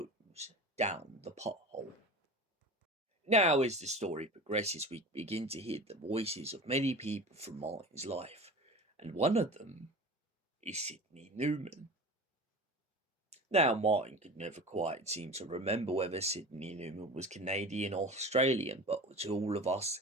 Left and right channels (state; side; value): normal; both; correlation 0.34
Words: down the pothole. Now, as the story progresses, we begin to hear the voices of many people from Martin's life, and one of them is Sidney Newman. Now, Martin could never quite seem to remember whether Sidney Newman was Canadian or Australian, but to all of us